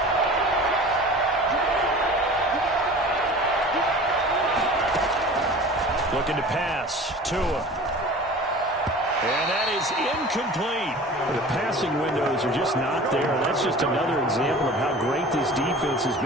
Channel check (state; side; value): normal; both; correlation 0.40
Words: Looking to pass. Tua. And that is incomplete. The passing windows are just not there. That's just another example of how great this defense has